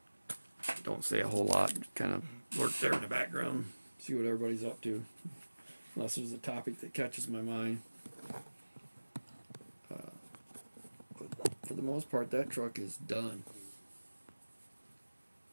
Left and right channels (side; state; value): both; inverted; correlation -1.00